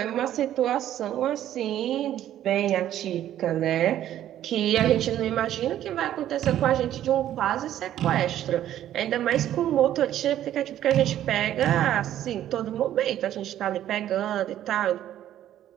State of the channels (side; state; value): left; quieter; 11.9 dB